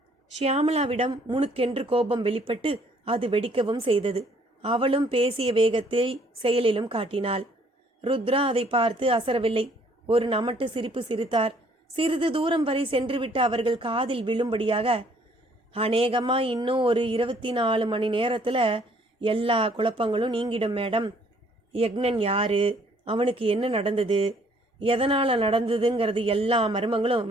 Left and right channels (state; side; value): normal; both; correlation 0.62